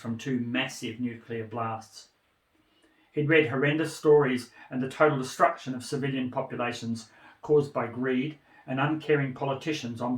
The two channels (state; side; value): identical; both; correlation 1.00